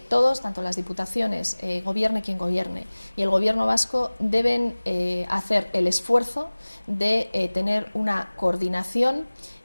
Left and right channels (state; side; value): inverted; both; correlation -1.00